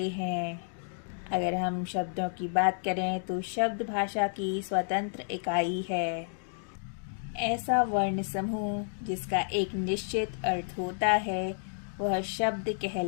हैं। अगर हम शब्दों की बात करें तो शब्द भाषा की स्वतंत्र इकाई है। ऐसा वर्ण समूह जिसका एक निश्चित अर्थ होता है वह शब्द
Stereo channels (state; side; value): silent; right; digital silence